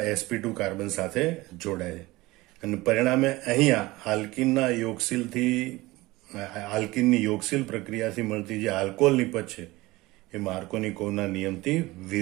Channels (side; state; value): left; quieter; 20.2 dB